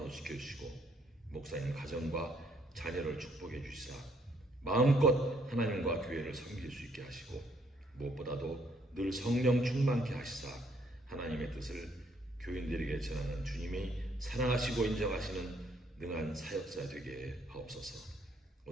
지켜주시고 목사님 가정과 자녀를 축복해 주시사 마음껏 하나님과 교회를 섬길 수 있게 하시고 무엇보다도 늘 성령 충만케 하시사 하나님의 뜻을 교인들에게 전하는 주님이 사랑하시고 인정하시는 능한 사역자 되게 하옵소서.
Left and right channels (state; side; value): normal; both; correlation 0.68